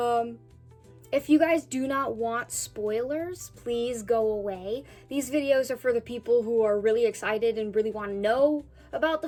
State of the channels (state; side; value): identical; both; correlation 1.00